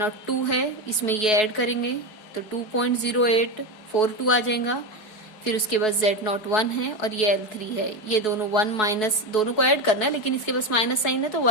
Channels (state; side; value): late; right; 4.7 ms